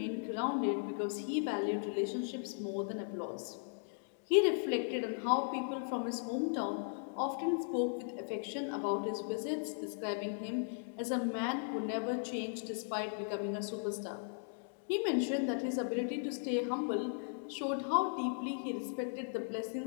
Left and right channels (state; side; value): silent; right; digital silence